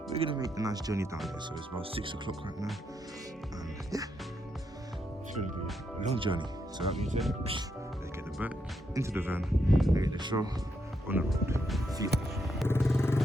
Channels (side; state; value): both; normal; correlation 0.80